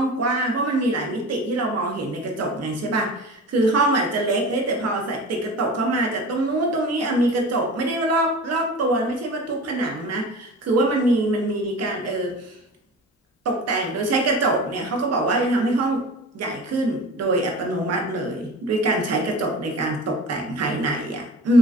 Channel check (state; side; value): normal; both; correlation 0.35